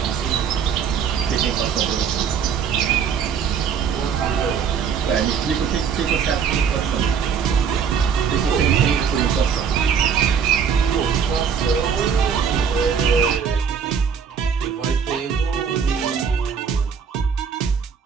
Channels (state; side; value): quieter; left; 7.0 dB